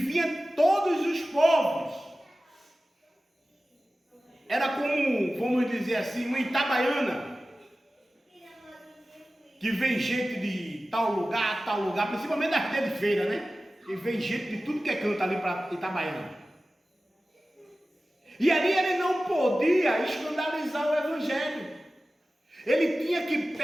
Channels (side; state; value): both; normal; correlation 0.96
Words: todos os povos. Era como, vamos dizer assim, uma Itabaiana, que vem gente de tal lugar, principalmente das dias de feira, né? E vem gente de tudo que é canto ali para Itabaiana. E ali ele não podia escandalizar o Evangelho. Ele tinha que